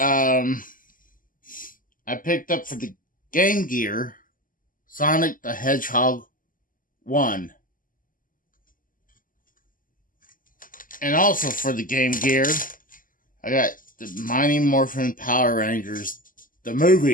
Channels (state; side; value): late; right; 0.40 ms